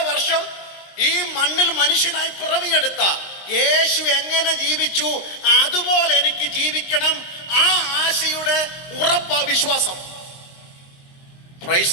വർഷം ഈ മണ്ണിൽ മനുഷ്യനായി പിറവിയെടുത്ത യേശു എങ്ങനെ ജീവിച്ചു അതുപോലെ എനിക്ക് ജീവിക്കണം. ആ ആശയുടെ ഉറപ്പാ വിശ്വാസം. Price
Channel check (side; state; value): right; late; 22 ms